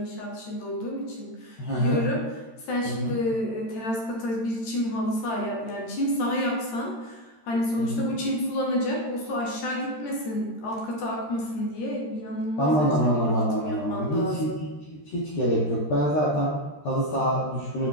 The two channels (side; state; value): right; late; 13 ms